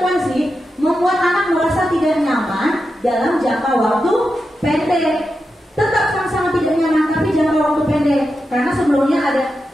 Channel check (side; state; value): both; normal; correlation 0.89